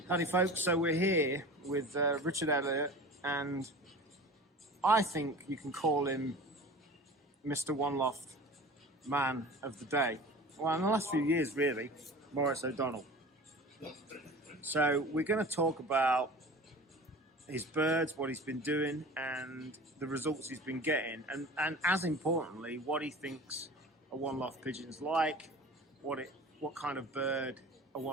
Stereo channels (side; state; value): both; normal; correlation 0.38